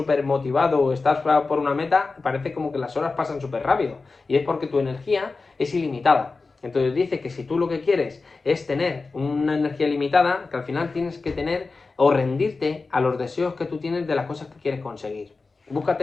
motivado o estás por una meta, parece como que las horas pasan súper rápido. Y es porque tu energía es ilimitada. Entonces dice que si tú lo que quieres es tener una energía limitada, que al final tienes que tener o rendirte a los deseos que tú tienes de las cosas que quieres conseguir. Búscate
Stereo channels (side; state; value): right; quieter; 4.0 dB